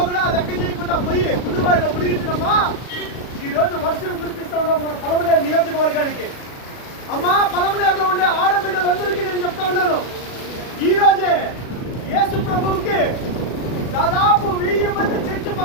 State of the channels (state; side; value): late; right; 36 ms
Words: కూడా లెక్క చేయకుండా పోయి గుండుబాయిలో మునిగించినమ్మా ఈరోజు వర్షం కురిపిస్తా ఉన్నాం మన పలమనేరు నియోజకవర్గానికి. అమ్మా పలమనేరులో ఉండే ఆడబిడ్డలందరికీ నేను చెప్తా ఉన్నాను, ఈ రోజే యేసు ప్రభువుకి దాదాపు 1000 మంది చర్చి